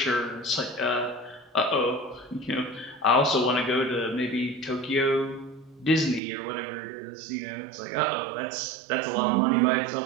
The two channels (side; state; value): left; drops out; at 6.2 s